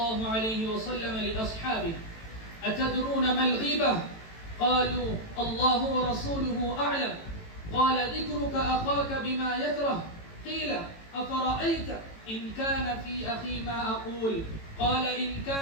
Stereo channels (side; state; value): right; late; 18 ms